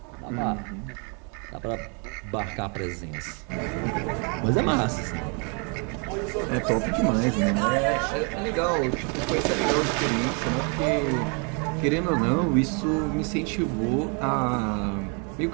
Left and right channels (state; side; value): quieter; left; 36.3 dB